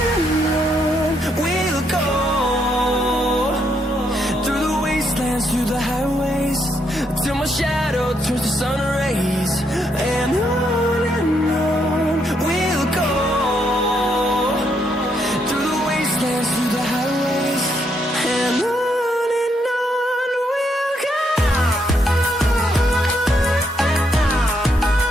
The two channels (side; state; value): both; normal; correlation 0.76